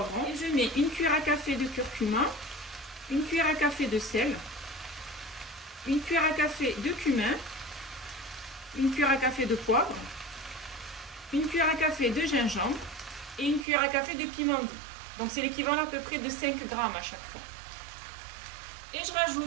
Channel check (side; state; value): left; drops out; at 13.7 s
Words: et je mets une cuillère à café de curcuma, une cuillère à café de sel, une cuillère à café de cumin, une cuillère à café de poivre, une cuillère à café de gingembre et une cuillère à café de piment doux. Donc c'est l'équivalent à peu près de 5 grammes à chaque fois. Et je